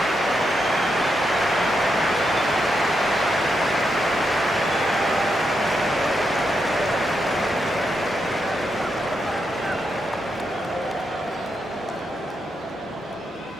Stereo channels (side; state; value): both; normal; correlation 0.83